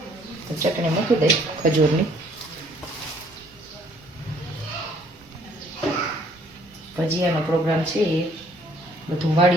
તો ચટણી મૂકી દઈ ખજૂરની. ભજીયાનો પ્રોગ્રામ છે. બધું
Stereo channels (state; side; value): normal; both; correlation 0.62